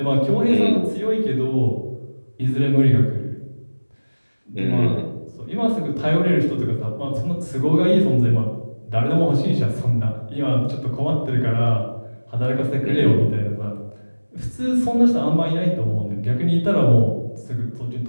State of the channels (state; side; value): inverted; both; correlation -1.00